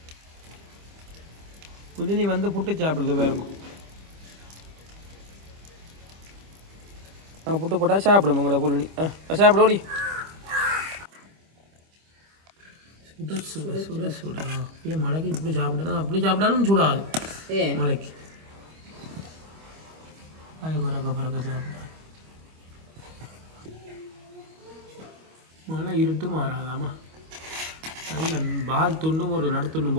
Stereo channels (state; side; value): late; left; 25 ms